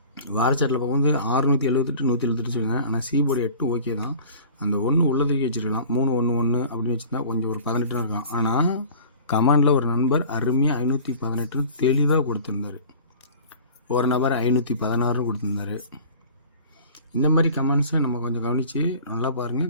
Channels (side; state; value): both; inverted; correlation -0.43